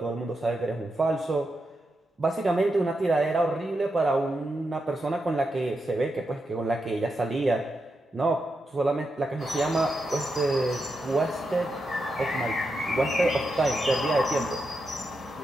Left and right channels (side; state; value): both; normal; correlation 0.86